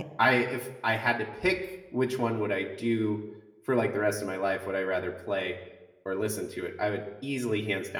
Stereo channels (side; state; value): both; identical; correlation 1.00